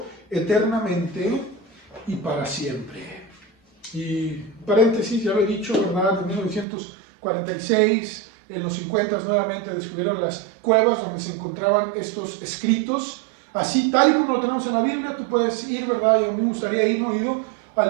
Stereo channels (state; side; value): drops out; left; at 6.7 s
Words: eternamente y para siempre. Y paréntesis, ya lo he dicho, ¿verdad? En 1946, en los 50 nuevamente descubrieron las cuevas donde se encontraban estos escritos. Así, tal y como lo tenemos en la Biblia, tú puedes ir, ¿verdad? Y a mí me gustaría ir, no he ido